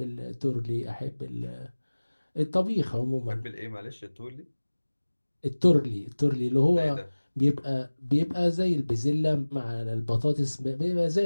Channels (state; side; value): inverted; both; correlation -1.00